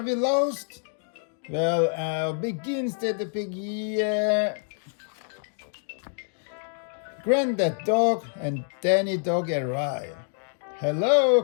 lost? Well, begins Daddy Pig, yeah. Granddad Dog and Danny Dog arrive. Hello,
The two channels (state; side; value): silent; right; digital silence